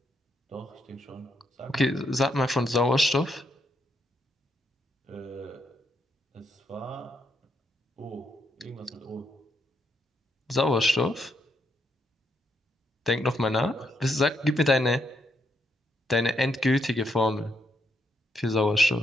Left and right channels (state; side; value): normal; both; correlation 0.78